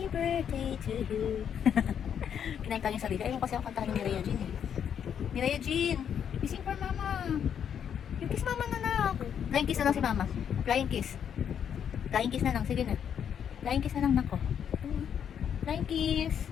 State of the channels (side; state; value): right; quieter; 8.4 dB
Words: birthday to you. Kinanta niya sarili. Ayaw kasi ako kantahan ni Rhea Jean eh. Rhea Jean, you sing for Mama. You kiss Mama na lang. Flying kiss na lang si Mama. Flying kiss. Flying kiss na lang. Sige na. Flying kiss na lang nako. Flying kiss.